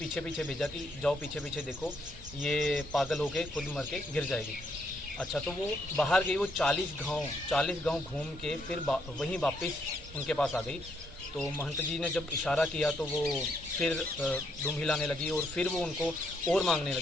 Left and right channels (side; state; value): both; normal; correlation 0.74